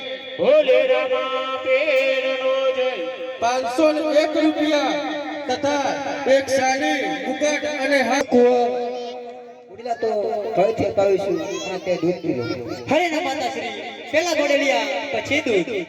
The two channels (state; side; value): identical; both; correlation 1.00